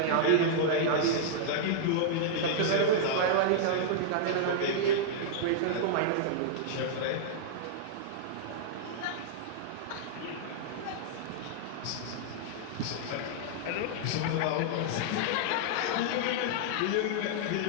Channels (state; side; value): different; both; correlation -0.02